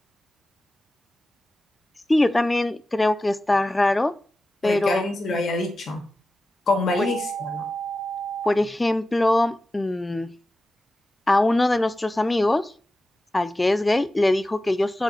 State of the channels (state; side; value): normal; both; correlation 0.94